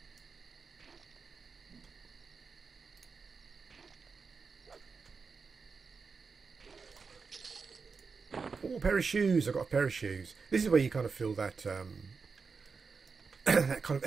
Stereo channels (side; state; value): left; quieter; 5.0 dB